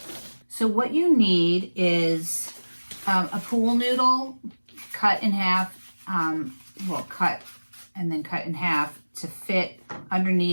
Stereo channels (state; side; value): inverted; both; correlation -1.00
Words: So what you need is a pool noodle cut in half, cut and then cut in half to fit